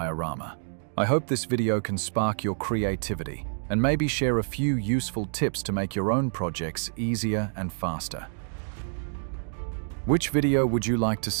I hope this video can spark your creativity and maybe share a few useful tips to make your own projects easier and faster. Which video would you like to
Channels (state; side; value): silent; left; digital silence